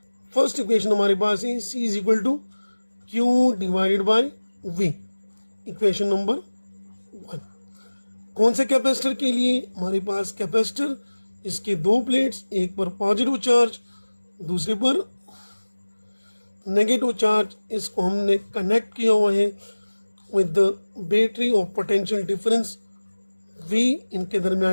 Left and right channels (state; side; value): inverted; both; correlation -1.00